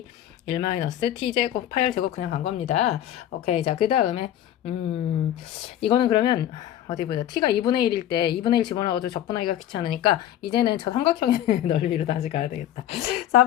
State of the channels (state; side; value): quieter; right; 11.8 dB